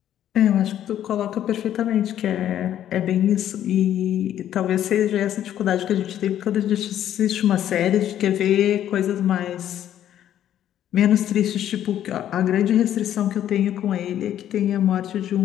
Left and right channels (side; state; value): right; quieter; 11.1 dB